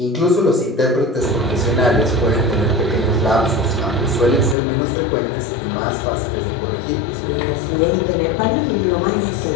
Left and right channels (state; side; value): drops out; right; at 4.5 s